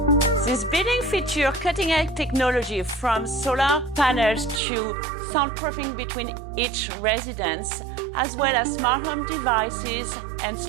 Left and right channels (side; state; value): left; drops out; at 4.6 s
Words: This building features cutting-edge technology from solar panels to soundproofing between each residence, as well as smart home devices and